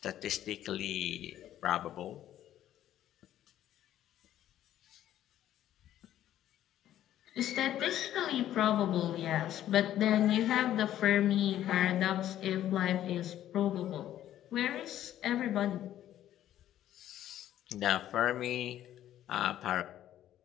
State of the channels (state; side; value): quieter; right; 12.1 dB